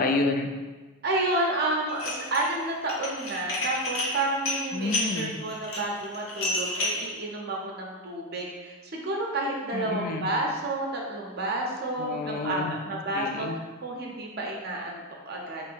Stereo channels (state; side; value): normal; both; correlation 0.09